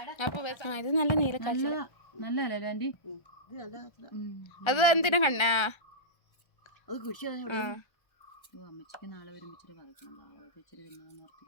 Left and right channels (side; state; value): right; late; 1.3 ms